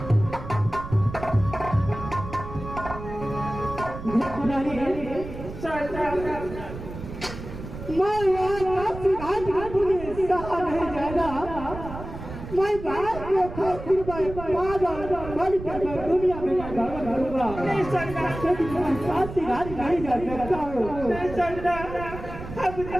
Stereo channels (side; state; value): right; noise; rumble, 11 dB below the sound